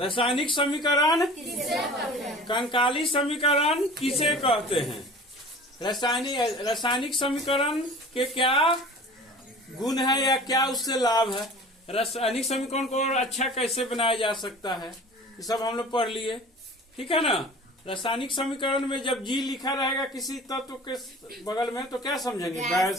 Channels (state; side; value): normal; both; correlation 0.42